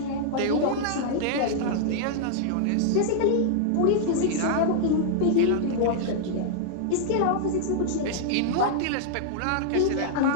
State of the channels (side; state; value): both; different; correlation -0.01